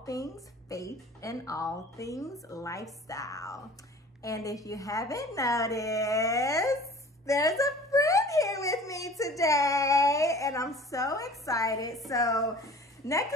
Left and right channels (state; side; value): normal; both; correlation 0.45